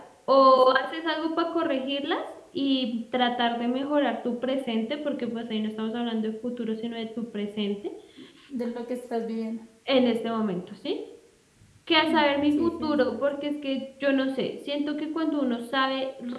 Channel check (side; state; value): both; identical; correlation 1.00